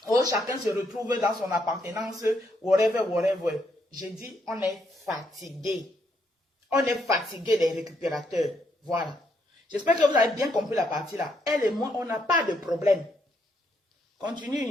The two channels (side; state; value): both; normal; correlation 0.75